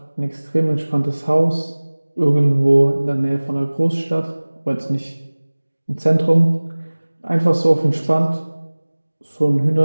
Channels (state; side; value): inverted; both; correlation -1.00